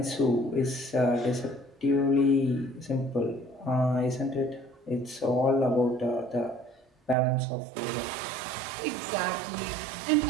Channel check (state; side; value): drops out; left; at 7.2 s